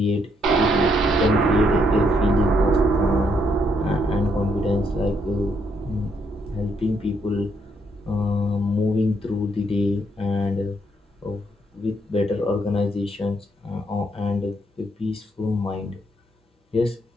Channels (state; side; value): normal; both; correlation 0.74